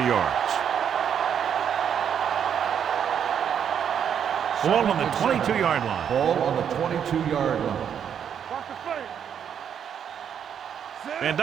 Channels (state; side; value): quieter; left; 8.4 dB